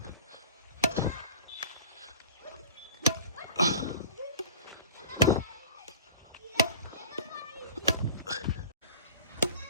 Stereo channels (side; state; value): both; inverted; correlation -0.42